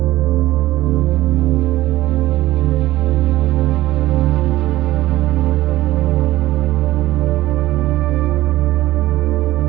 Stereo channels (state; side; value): quieter; left; 16.4 dB